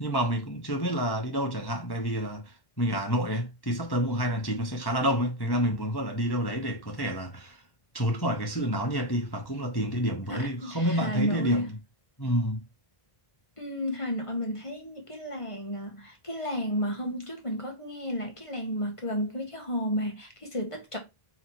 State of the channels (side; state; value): right; late; 1.1 ms